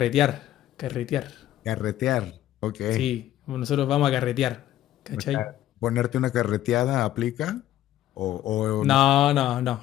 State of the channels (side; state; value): right; quieter; 13.1 dB